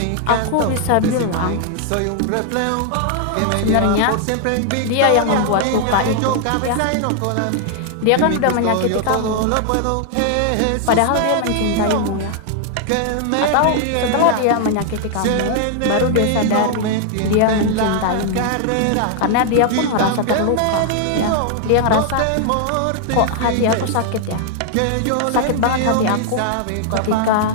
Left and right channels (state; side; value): different; both; correlation 0.00